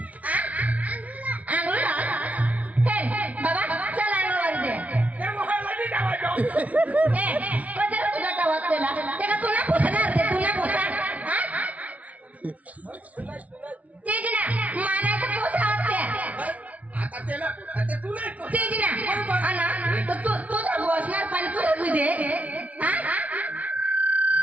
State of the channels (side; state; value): left; late; 0.069 ms